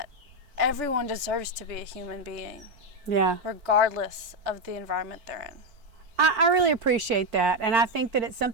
everyone deserves to be a human being. Yeah. Regardless of the environment they're in. I really appreciate that, and I think that it's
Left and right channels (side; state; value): left; late; 4.5 ms